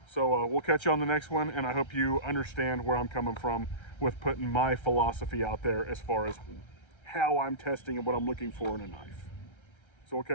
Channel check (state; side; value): late; right; 1.3 ms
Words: So we'll catch you on the next one, and I hope you understand where I'm coming from with putting my philosophy out there as far as how I'm testing and what I'm looking for in a knife. So we'll